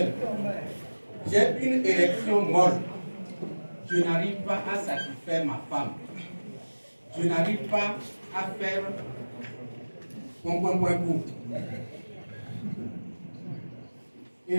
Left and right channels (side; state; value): both; inverted; correlation -1.00